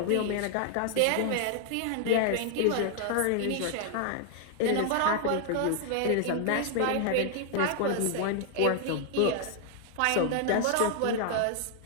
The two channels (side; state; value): both; different; correlation 0.00